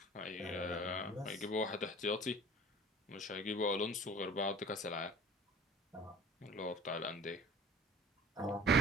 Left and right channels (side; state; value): both; normal; correlation 0.46